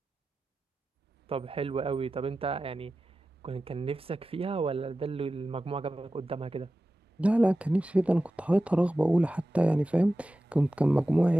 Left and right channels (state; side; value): normal; both; correlation 0.94